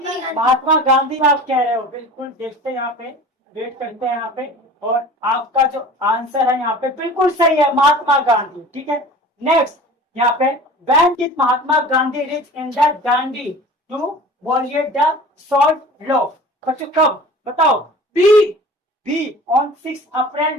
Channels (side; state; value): both; normal; correlation 0.41